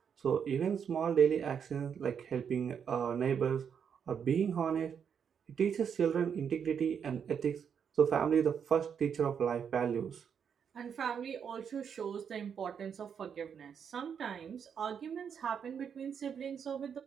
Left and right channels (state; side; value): quieter; left; 7.4 dB